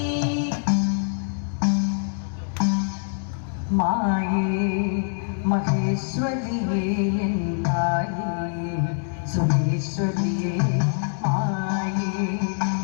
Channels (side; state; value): right; silent; digital silence